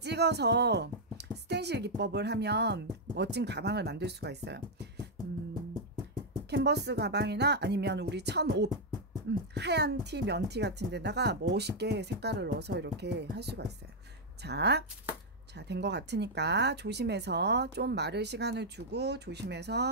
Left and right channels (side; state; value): both; normal; correlation -0.02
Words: 스텐실 기법을 하면 멋진 가방을 만들 수가 있어요. 캔버스 가방이나 아니면 우리 천옷, 하얀 티, 면티 같은 데다가 멋있게 색깔을 넣어서 이렇게 할 수가 있어요. 자, 된 것 같으니까 조심해서 좀 마를 시간을 주고